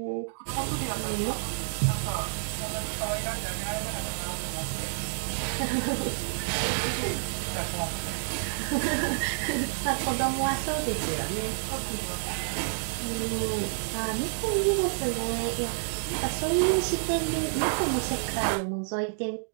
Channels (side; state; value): left; silent; digital silence